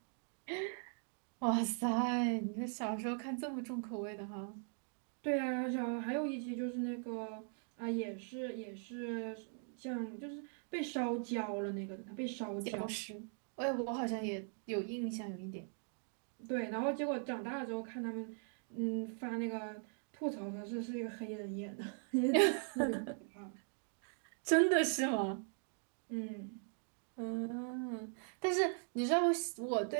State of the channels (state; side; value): silent; left; 51 dB below the other